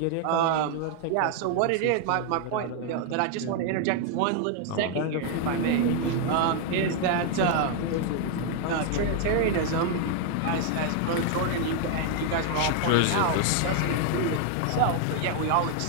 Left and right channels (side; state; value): both; different; correlation 0.00